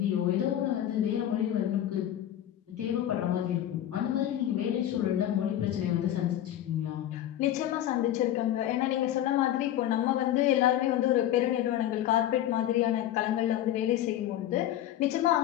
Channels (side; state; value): right; quieter; 12.0 dB